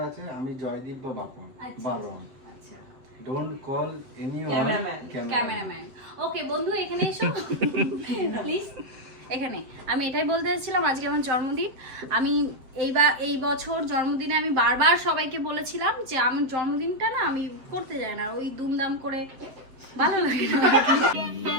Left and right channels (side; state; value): left; late; 7.8 ms